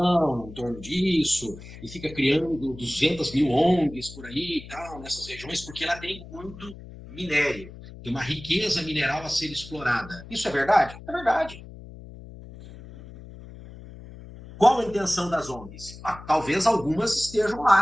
em torno disso? E fica criando 200 mil ONGs por aí e tal, nessas regiões, porque ela tem muito minério. Tem uma riqueza mineral a ser explorada. Isso é verdade? É verdade. Qual a intenção das ONGs? Talvez algumas estejam lá,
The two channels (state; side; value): noise; left; hum, 16 dB below the sound